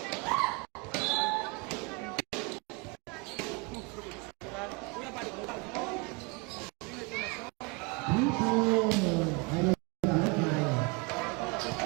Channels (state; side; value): quieter; left; 28.8 dB